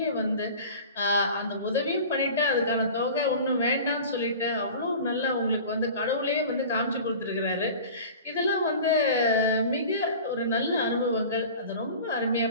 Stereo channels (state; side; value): inverted; both; correlation -0.39